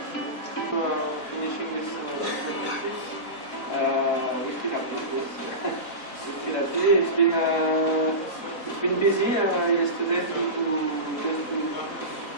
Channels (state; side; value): late; right; 4.0 ms